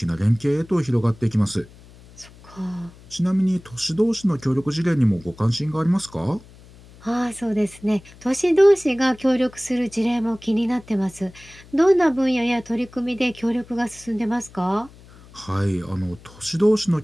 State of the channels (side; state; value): left; noise; hum, 22 dB below the sound